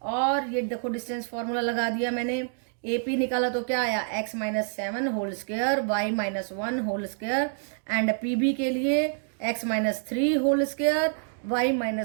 और ये देखो डिस्टेंस फॉर्मूला लगा दिया मैंने. AP निकाला तो क्या आया, x minus 7 whole square y minus 1 whole square and PB के लिए x minus 3 whole square y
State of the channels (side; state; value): left; silent; digital silence